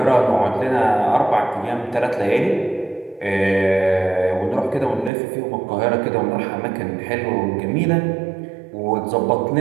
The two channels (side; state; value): left; drops out; at 5.1 s